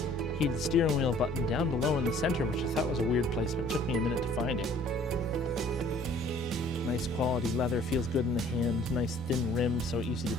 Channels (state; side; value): normal; both; correlation 0.55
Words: Heated steering wheel button down below in the center, which I thought was a weird placement. It took me a minute to find it. Nice quality leather, feels good in the hand. Nice thin rim, so easy to